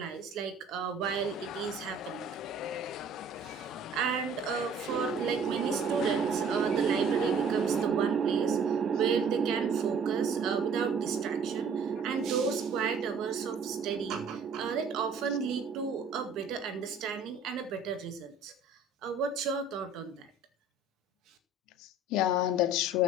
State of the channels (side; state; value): left; quieter; 3.6 dB